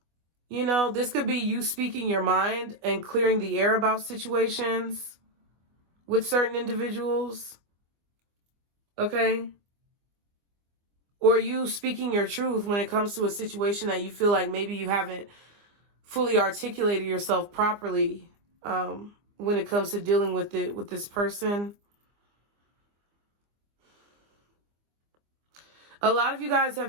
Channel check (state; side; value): late; left; 24 ms